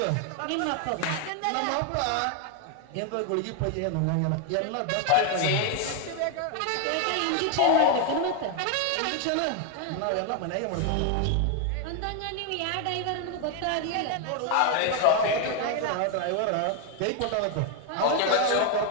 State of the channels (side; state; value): both; different; correlation 0.01